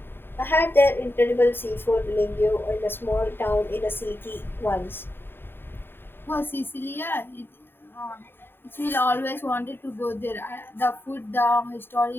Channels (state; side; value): late; right; 0.10 ms